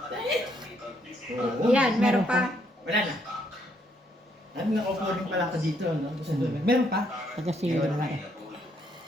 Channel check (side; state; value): both; normal; correlation 0.72